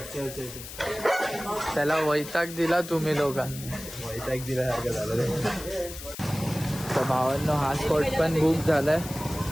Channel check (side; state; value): left; noise; hiss, 12 dB below the sound